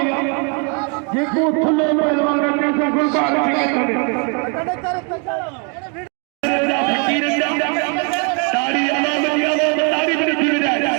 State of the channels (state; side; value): quieter; left; 35.4 dB